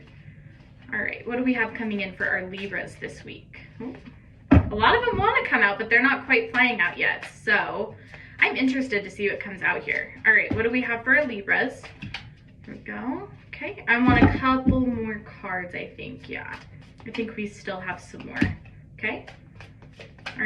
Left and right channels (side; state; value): both; identical; correlation 1.00